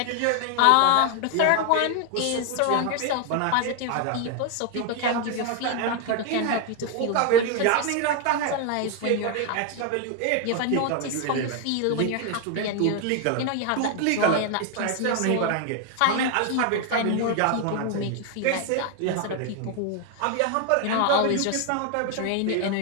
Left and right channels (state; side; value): different; both; correlation 0.01